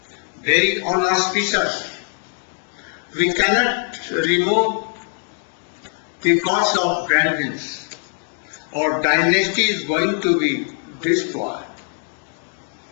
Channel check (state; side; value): silent; right; 57 dB below the other